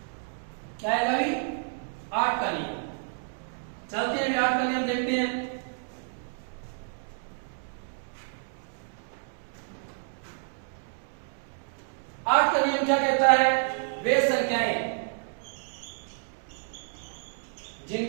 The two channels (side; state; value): left; silent; digital silence